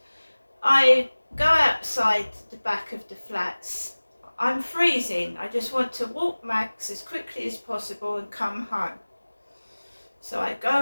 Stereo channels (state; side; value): inverted; both; correlation -1.00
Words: I go outside the back of the flats. I'm freezing. I just want to walk Max as quickly as possible and come home. So I